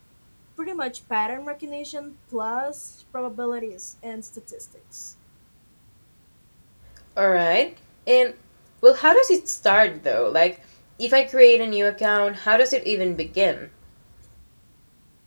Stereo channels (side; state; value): both; inverted; correlation -1.00